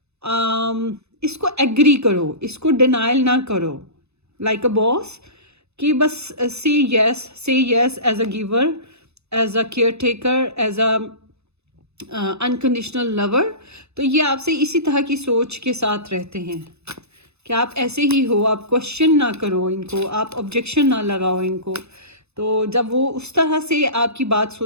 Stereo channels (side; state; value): left; late; 0.80 ms